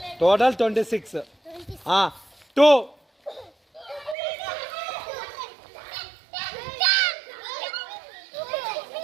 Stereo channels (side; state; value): left; drops out; at 4.2 s